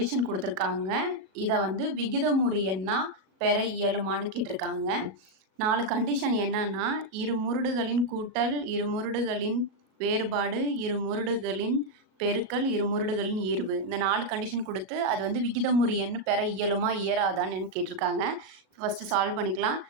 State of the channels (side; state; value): left; late; 38 ms